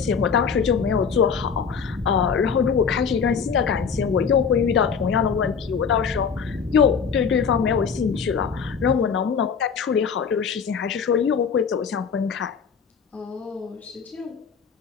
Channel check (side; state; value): right; quieter; 6.3 dB